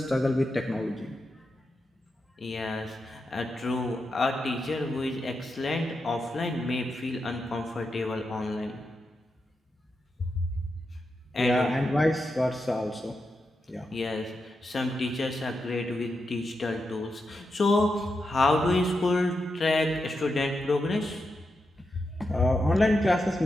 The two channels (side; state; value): both; normal; correlation 0.87